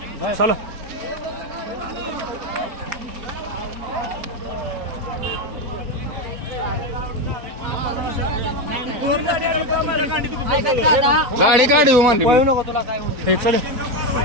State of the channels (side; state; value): left; late; 4.0 ms